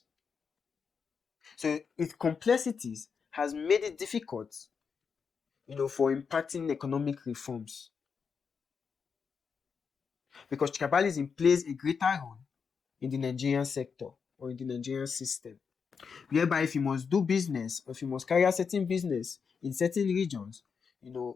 So its complexities has made it difficult, for impacting economic reforms because tribalism plays a greater role in the Nigerian sector or in the Nigerian system, whereby if you must do business or if you must carry out certain business in certain regions,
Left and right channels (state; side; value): quieter; right; 5.9 dB